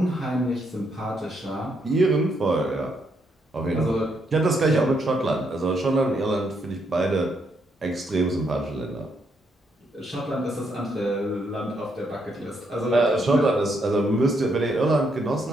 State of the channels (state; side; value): normal; both; correlation 0.76